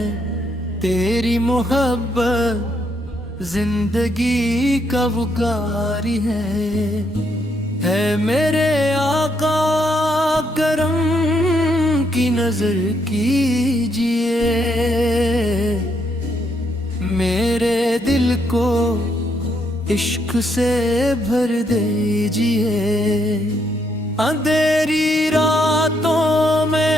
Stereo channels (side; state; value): both; normal; correlation 0.75